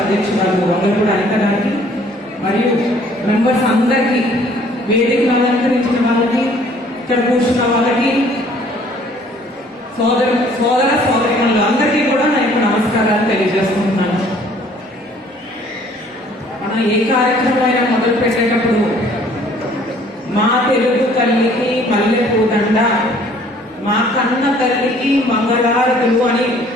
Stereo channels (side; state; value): both; normal; correlation 0.57